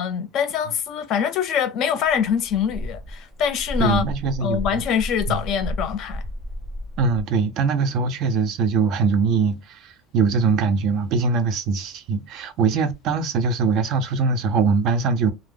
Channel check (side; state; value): both; normal; correlation 0.30